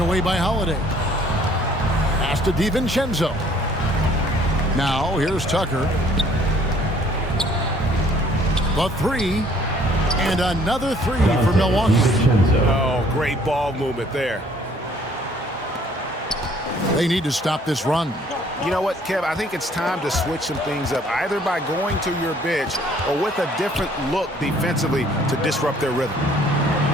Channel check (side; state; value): both; normal; correlation 0.59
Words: away by Holiday. Pass to DiVincenzo. Now here's Tucker. The 3. And another 3 for Milwaukee. Oh, great ball movement there. They need to stop this run. You know what, Kev? I think it's time to switch some things up, either by going to your bench or with a different look defensively to disrupt their rhythm.